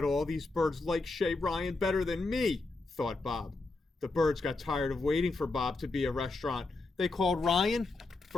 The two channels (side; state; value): right; quieter; 3.4 dB